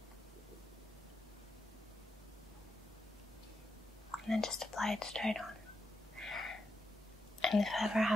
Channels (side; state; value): both; normal; correlation 0.85